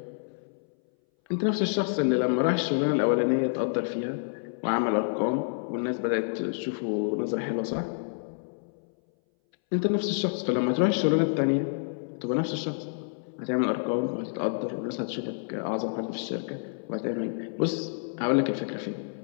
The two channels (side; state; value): right; silent; 59 dB below the other